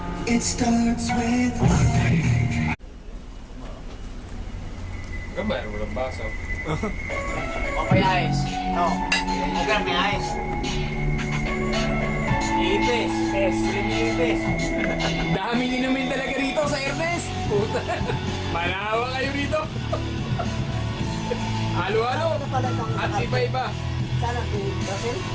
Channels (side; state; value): both; identical; correlation 1.00